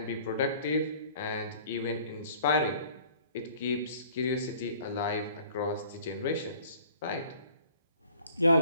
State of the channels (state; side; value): inverted; both; correlation -0.52